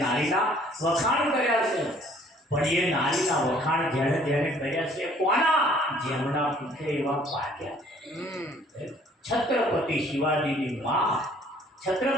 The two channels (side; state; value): both; normal; correlation 0.58